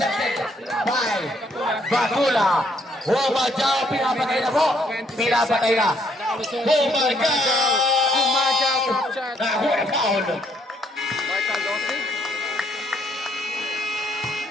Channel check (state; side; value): normal; both; correlation 0.69